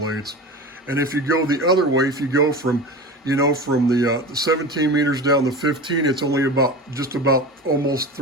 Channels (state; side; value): normal; both; correlation 0.30